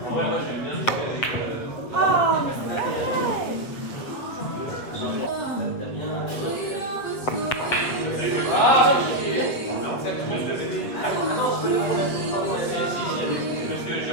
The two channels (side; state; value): right; late; 7.8 ms